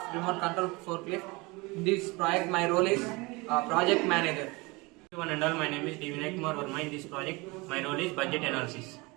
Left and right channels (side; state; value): left; quieter; 25.1 dB